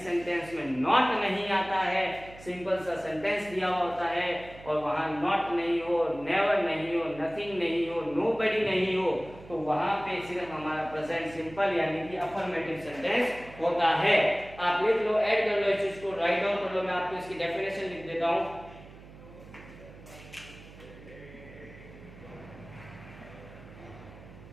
सेंटेंस में नॉट नहीं आता है, सिंपल सा सेंटेंस दिया हुआ होता है और वहां नॉट नहीं हो, नेवर नहीं हो, नथिंग नहीं हो, नोबडी नहीं हो, तो वहां पे सिर्फ हमारा प्रेजेंट सिंपल यानी कि अफर्मेटिव सेंटेंस होता है। आप लिख लो, ऐड कर लो इस चीज को, राइट डाउन कर लो, मैं आपको इसकी डेफिनेशन लिख देता हूं।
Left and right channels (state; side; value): noise; right; hum, 18 dB below the sound